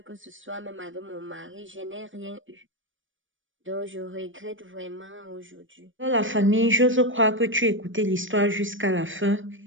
que ce soit même avec mon mari, je n'ai rien eu. Donc, je regrette vraiment aujourd'hui. Dans la famille, j'ose croire que tu écoutais l'histoire jusqu'à la fin,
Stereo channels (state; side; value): late; left; 0.57 ms